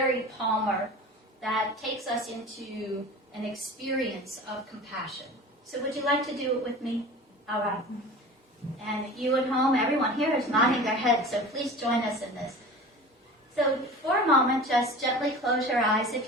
Palmer that takes us into an experience of compassion. So would you like to do it with me? All right. And you at home, everyone here is nodding their head, so please join us in this. So for a moment, just gently close your eyes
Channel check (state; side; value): normal; both; correlation 0.37